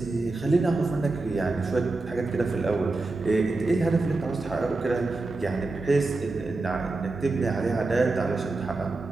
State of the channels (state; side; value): quieter; left; 3.3 dB